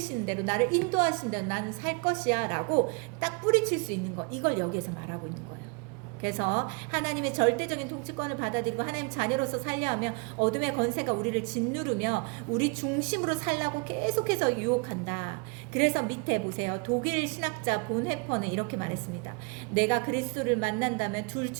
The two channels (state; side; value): quieter; left; 33.3 dB